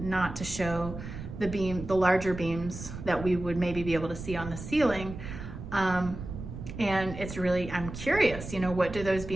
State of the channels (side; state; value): right; noise; rumble, 10 dB below the sound